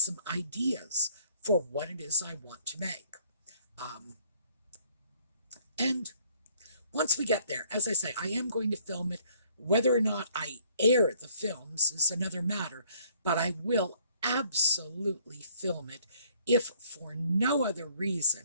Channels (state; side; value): inverted; both; correlation -0.61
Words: ideas for what it is I want to make. And once we get there, as I say, I am going to film it. Whether or not I air the films is another matter, but I will absolutely film it if for no other